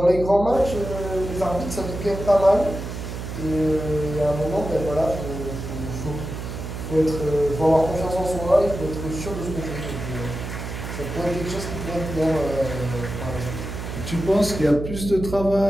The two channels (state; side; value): noise; right; hum, 7 dB below the sound